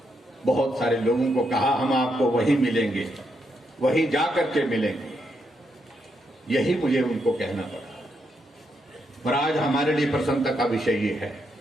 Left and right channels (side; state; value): both; normal; correlation 0.80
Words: बहुत सारे लोगों को कहा हम आपको वहीं मिलेंगे, वहीं जाकर के मिलेंगे। यही मुझे उनको कहना पड़ा। पर आज हमारे लिए प्रसन्नता का विषय ये है